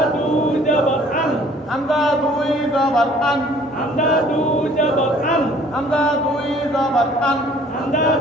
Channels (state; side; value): normal; both; correlation 0.55